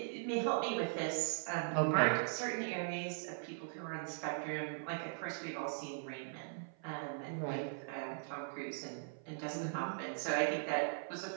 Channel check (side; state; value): left; silent; 51 dB below the other